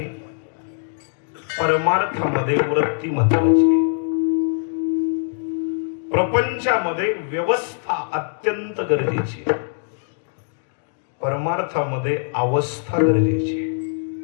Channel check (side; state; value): right; silent; digital silence